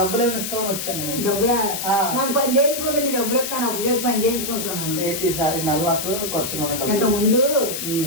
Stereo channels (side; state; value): left; noise; hiss, 4 dB below the sound